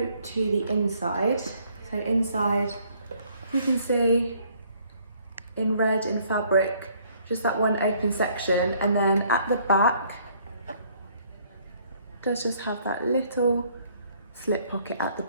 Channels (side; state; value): both; inverted; correlation -0.63